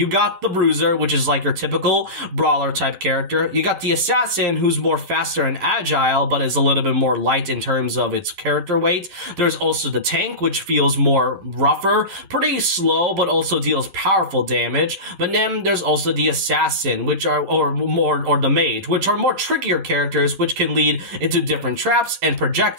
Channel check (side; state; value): left; late; 10 ms